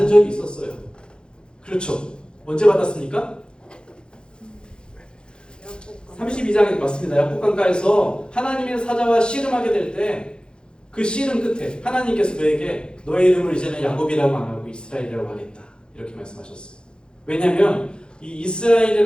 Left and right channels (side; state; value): right; late; 0.050 ms